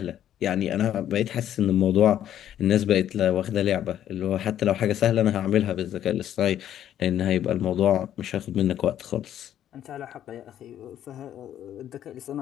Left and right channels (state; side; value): quieter; right; 11.0 dB